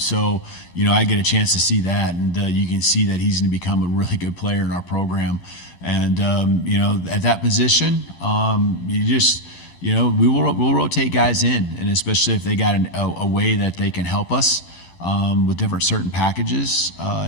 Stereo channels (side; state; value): right; late; 12 ms